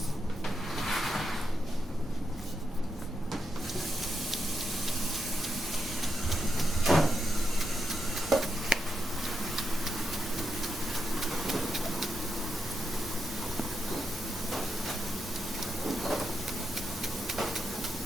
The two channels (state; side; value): noise; left; hum, 23 dB below the sound